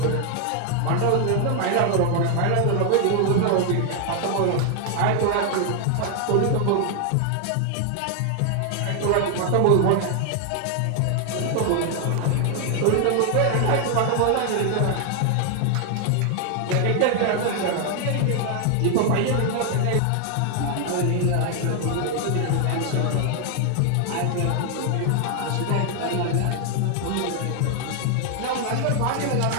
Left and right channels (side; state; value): both; different; correlation 0.00